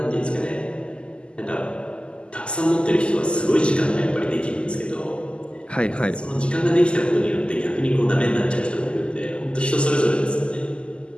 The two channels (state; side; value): late; right; 0.051 ms